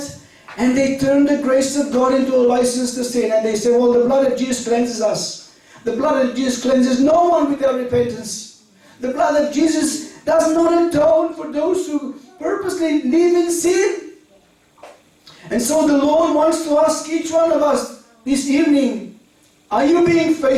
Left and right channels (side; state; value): both; identical; correlation 1.00